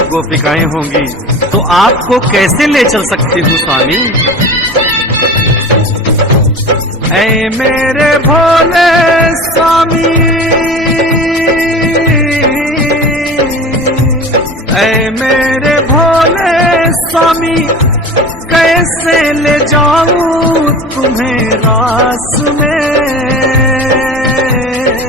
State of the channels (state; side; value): normal; both; correlation 0.35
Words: गोपिकाएं होंगी। तो आपको कैसे ले चल सकती हूँ स्वामी? ऐ मेरे भोले स्वामी, ऐ मेरे भोले स्वामी, कैसे ले जाऊं तुम्हें रास में?